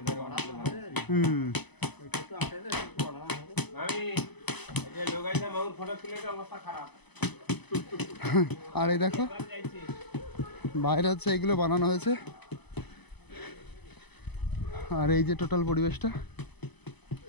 আর এই দেখো বাইরে হচ্ছে এগুলো বানানো হয়েছে। আর এই যে টোটাল পরিবেশটা,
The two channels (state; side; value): late; right; 0.99 ms